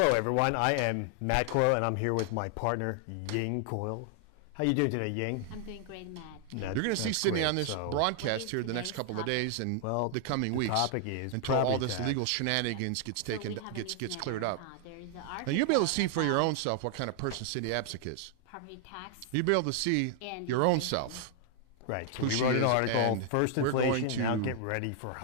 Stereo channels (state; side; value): different; both; correlation 0.00